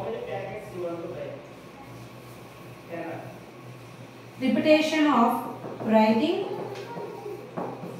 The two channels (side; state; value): both; identical; correlation 1.00